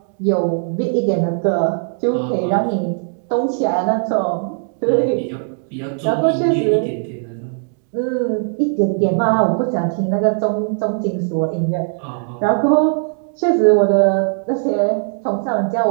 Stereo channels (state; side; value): silent; left; 67 dB below the other